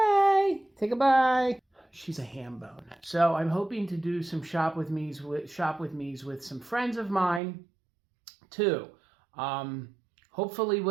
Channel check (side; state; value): left; drops out; at 7.4 s